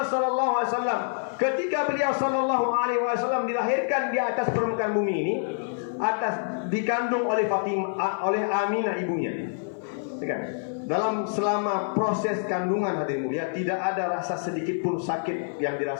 sallallahu alaihi wasallam, ketika beliau sallallahu alaihi wasallam dilahirkan di atas permukaan bumi ini, dikandung oleh oleh Aminah ibunya. Dalam selama proses kandungan hadirin mulia, tidak ada rasa sedikit pun sakit yang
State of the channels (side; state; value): right; silent; 60 dB below the other